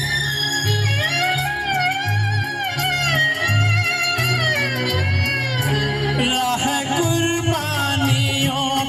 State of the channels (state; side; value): identical; both; correlation 1.00